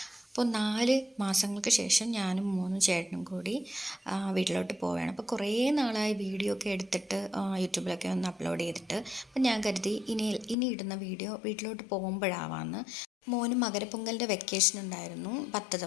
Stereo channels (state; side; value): drops out; right; at 10.6 s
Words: അപ്പോൾ 4 മാസങ്ങൾക്ക് ശേഷം ഞാനും മോനും ചേട്ടനും കൂടി വീട്ടിലോട്ട് പോവുകയാണ്. അപ്പോൾ കുറേ നാളായി വീഡിയോ ഒക്കെ എടുത്തിട്ട് യൂട്യൂബിലൊക്കെ ഒന്ന് അപ്ലോഡ് ചെയ്തിട്ട്. അപ്പോൾ ഞാൻ കരുതി ഇനി ഇടുന്ന വീഡിയോ വീട്ടിലോട്ട് പോകുമ്പോഴാവാമെന്ന്. മോന് മകരപ്പൊങ്കലിൻ്റെ വെക്കേഷൻ ഉണ്ടായിരുന്നു 10